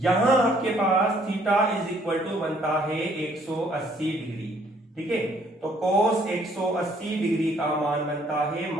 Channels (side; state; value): both; normal; correlation 0.64